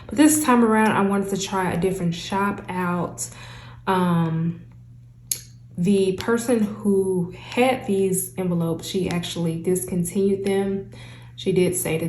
But this time around, I wanted to try a different shop out. The person who had these envelopes, she actually discontinued them. She did say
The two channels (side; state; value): both; identical; correlation 1.00